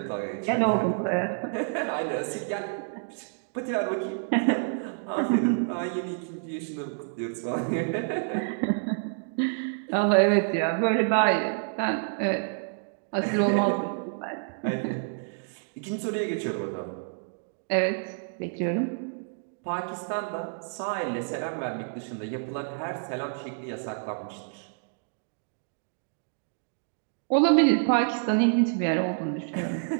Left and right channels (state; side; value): silent; left; digital silence